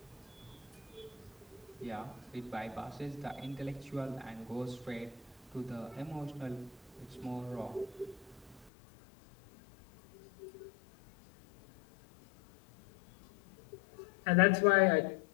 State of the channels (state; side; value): drops out; right; at 8.7 s